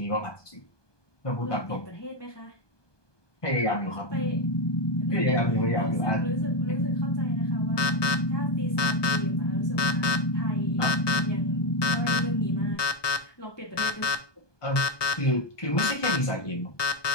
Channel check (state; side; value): late; right; 1.2 ms